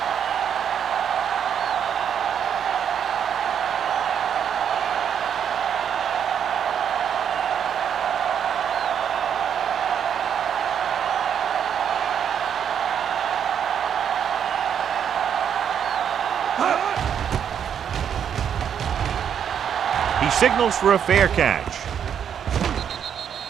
He signals for a fair catch.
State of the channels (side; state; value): left; quieter; 8.4 dB